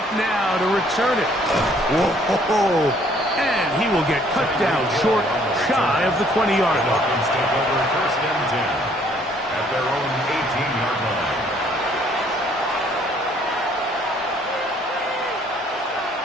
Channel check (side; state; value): both; normal; correlation 0.62